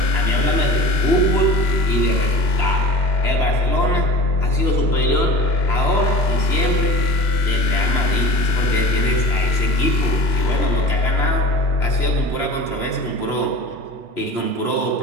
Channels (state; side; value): late; right; 2.9 ms